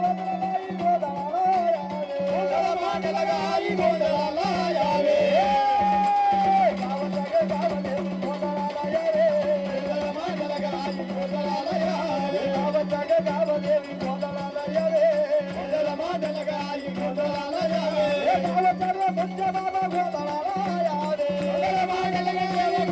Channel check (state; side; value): identical; both; correlation 1.00